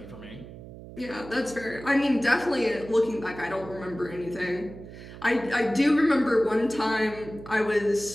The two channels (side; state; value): right; noise; hum, 15 dB below the sound